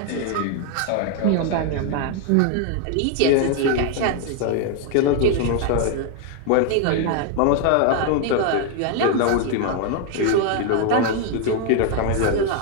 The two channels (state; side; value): different; both; correlation 0.01